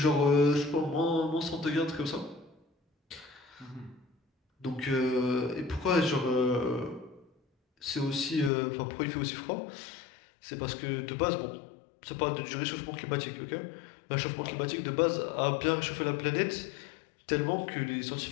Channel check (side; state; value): right; drops out; at 8.5 s